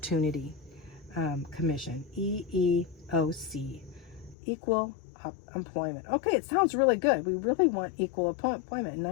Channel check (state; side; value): drops out; right; at 4.4 s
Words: Commission, EEOC, Equal Employment. Okay, it sounds really good. We really want equal employment. In